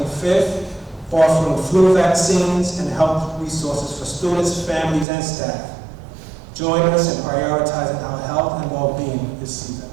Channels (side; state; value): left; drops out; at 5.1 s